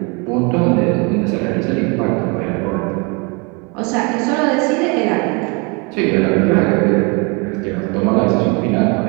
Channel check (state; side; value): quieter; left; 30.9 dB